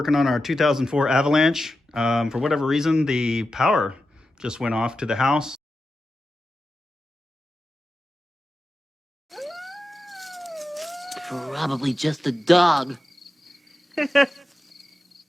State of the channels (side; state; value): both; normal; correlation 0.92